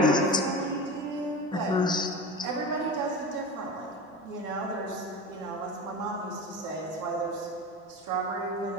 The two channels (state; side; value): normal; both; correlation 0.29